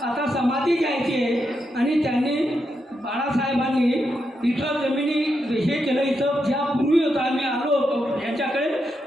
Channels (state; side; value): normal; both; correlation 0.84